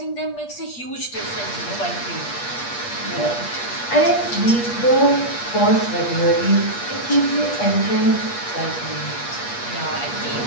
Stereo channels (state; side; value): late; right; 8.4 ms